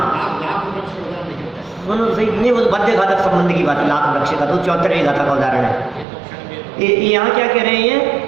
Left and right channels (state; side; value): drops out; left; at 6.1 s